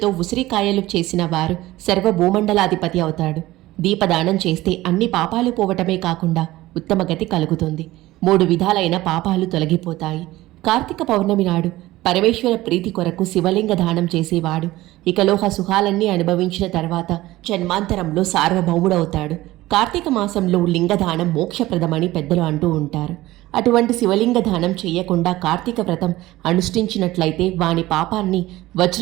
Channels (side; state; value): left; quieter; 17.3 dB